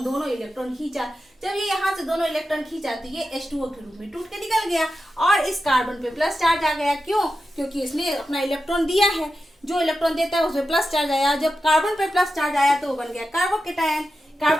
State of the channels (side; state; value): both; normal; correlation 0.91